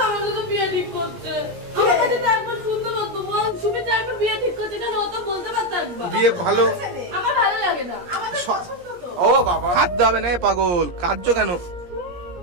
আমি তো বিয়ে ঠিক করতে, আমার কাছে তো একবার শুনতে পারতো, বল তুমি তো একবার বিয়ে ঠিক করতে কেন? ও তো বলতে পারতো একবার বিয়ে ভালো, আমার ভালো লাগে না। ও বাবা হাত দেবে না পাগল, কার্য কেন?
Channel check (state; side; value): late; left; 17 ms